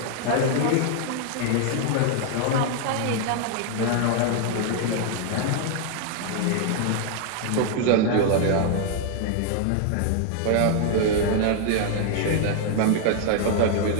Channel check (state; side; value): different; both; correlation 0.00